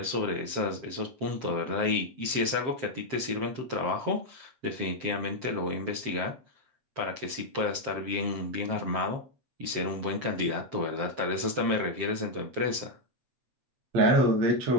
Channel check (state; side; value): late; left; 7.6 ms